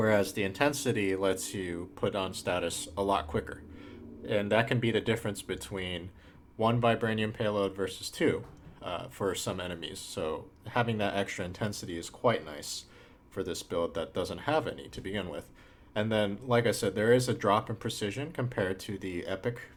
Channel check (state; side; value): identical; both; correlation 1.00